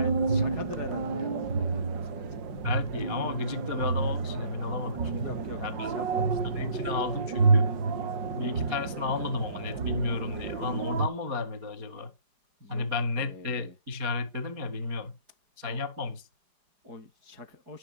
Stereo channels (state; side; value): late; left; 4.9 ms